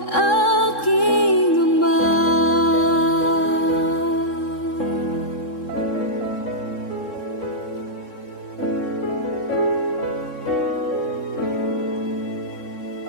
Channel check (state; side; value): late; right; 3.7 ms